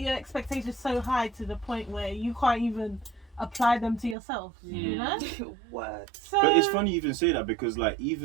expectations so high to the point where you can't even apply them to yourself. You know. Word. So, But it's funny you even say that because like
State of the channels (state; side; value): drops out; left; at 4.2 s